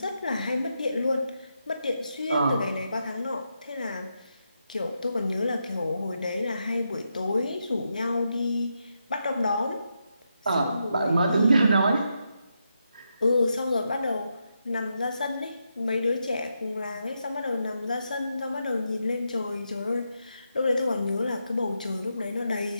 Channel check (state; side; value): inverted; both; correlation -0.84